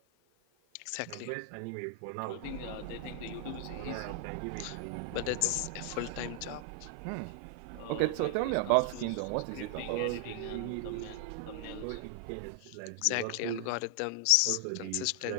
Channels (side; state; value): both; different; correlation 0.00